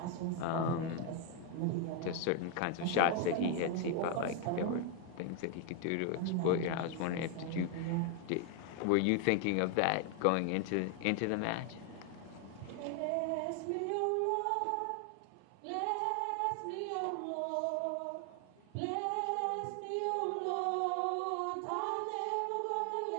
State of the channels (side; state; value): both; different; correlation 0.01